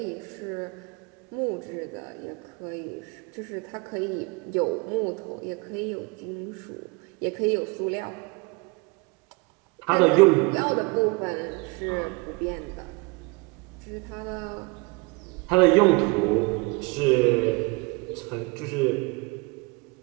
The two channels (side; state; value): left; quieter; 28.0 dB